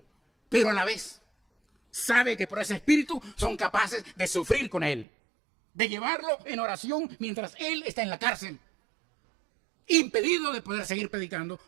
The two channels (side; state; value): left; drops out; at 5.1 s